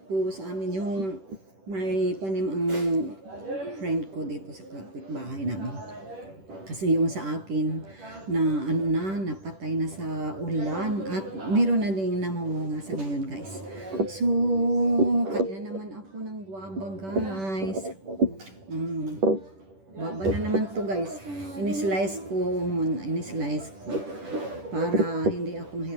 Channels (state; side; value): late; left; 10 ms